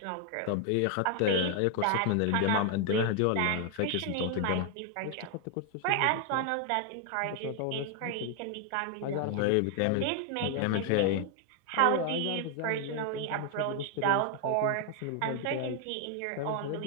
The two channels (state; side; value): different; both; correlation 0.00